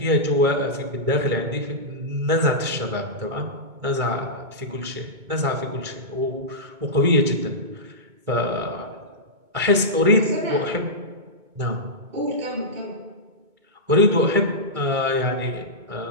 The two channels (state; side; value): late; left; 2.2 ms